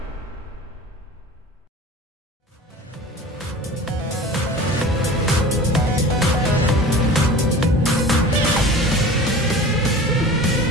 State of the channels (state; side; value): normal; both; correlation 0.39